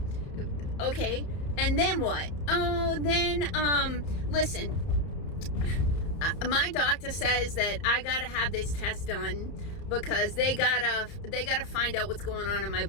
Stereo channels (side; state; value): right; late; 30 ms